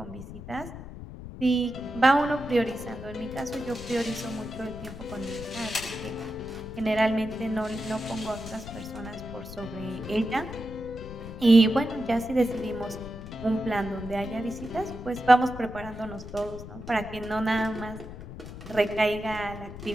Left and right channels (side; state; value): left; noise; rumble, 12 dB below the sound